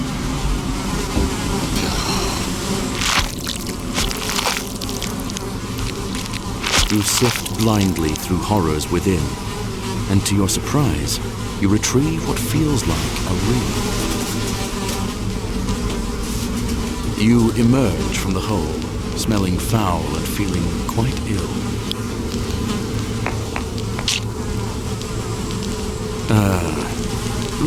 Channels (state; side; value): identical; both; correlation 1.00